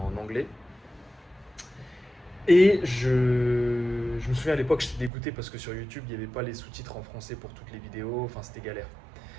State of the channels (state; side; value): drops out; left; at 5.1 s